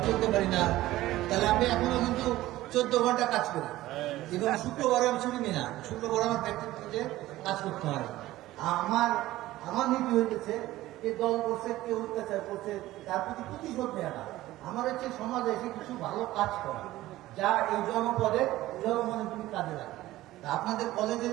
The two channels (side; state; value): left; quieter; 16.2 dB